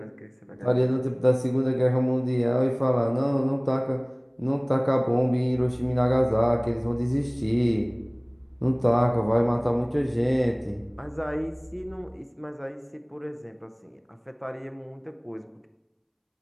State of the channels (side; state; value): both; identical; correlation 1.00